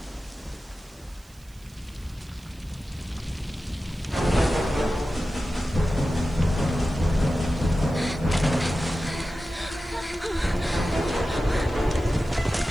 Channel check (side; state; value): right; noise; hiss, 26 dB below the sound